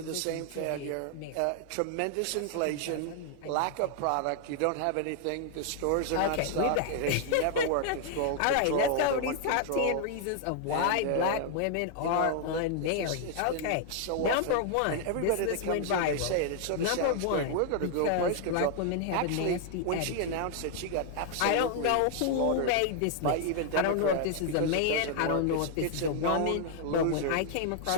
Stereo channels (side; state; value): both; different; correlation 0.00